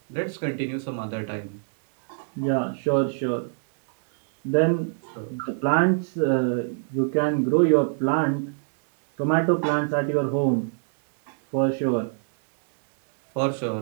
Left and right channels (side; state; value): left; silent; 61 dB below the other